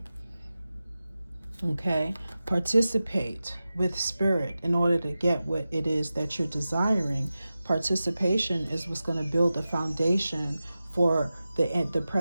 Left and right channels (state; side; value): inverted; both; correlation -0.94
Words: Okay, participate with Spirit in order to get what it is that you're desiring. Participation is what's going to build the foundation for the